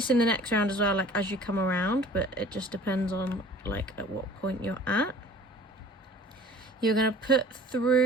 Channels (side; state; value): both; normal; correlation 0.47